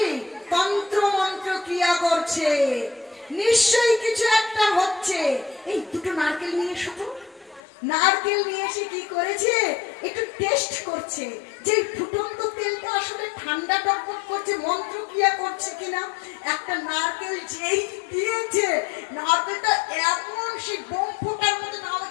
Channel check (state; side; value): drops out; right; at 7.6 s